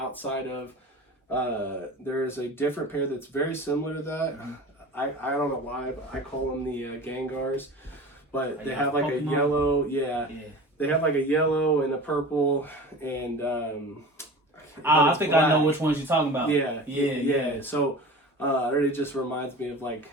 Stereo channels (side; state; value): both; normal; correlation 0.36